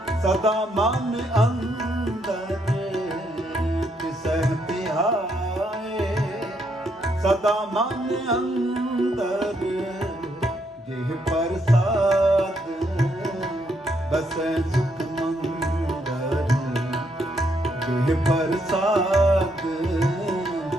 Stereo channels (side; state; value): both; normal; correlation 0.74